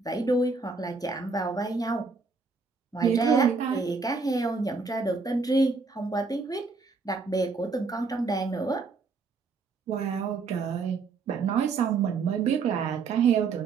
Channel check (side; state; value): left; quieter; 4.5 dB